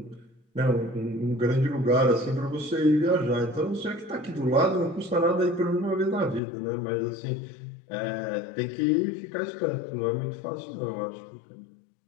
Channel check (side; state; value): right; drops out; at 6.4 s